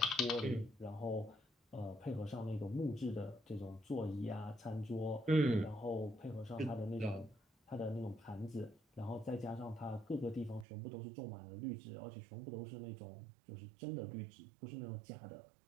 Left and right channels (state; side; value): drops out; left; at 10.7 s